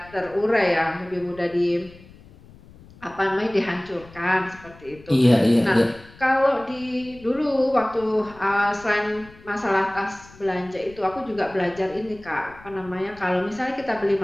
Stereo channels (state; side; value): noise; left; rumble, 22 dB below the sound